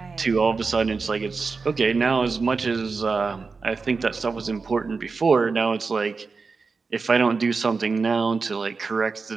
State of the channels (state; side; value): quieter; left; 4.5 dB